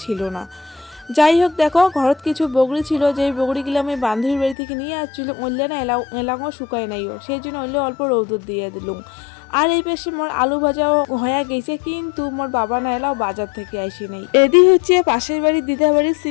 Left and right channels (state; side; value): drops out; right; at 4.5 s